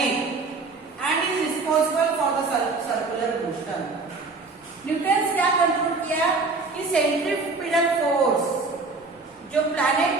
and is responsible for the circular motion. Newton क्या कंक्लूड किया कि सेंट्रीफ्यूगल फोर्स जो प्लैनेट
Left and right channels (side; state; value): left; quieter; 3.8 dB